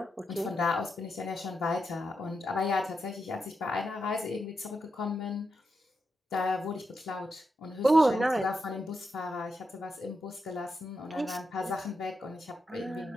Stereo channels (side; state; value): both; normal; correlation 0.85